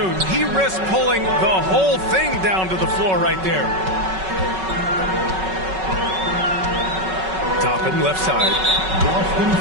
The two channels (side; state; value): left; late; 5.3 ms